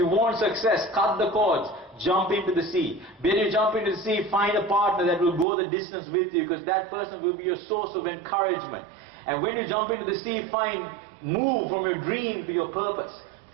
want success, cut the cords, jump into the sea. When you jump into the sea, find a partner that will go the distance with you, because that person will be your source of encouragement. And when you jump into the sea, move from your dream to your purpose.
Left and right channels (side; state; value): left; drops out; at 5.5 s